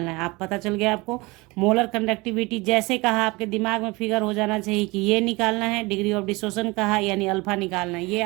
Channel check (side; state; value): left; quieter; 24.0 dB